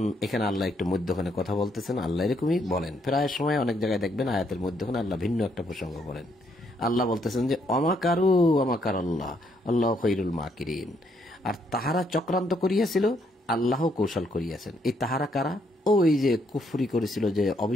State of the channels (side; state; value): both; normal; correlation 0.73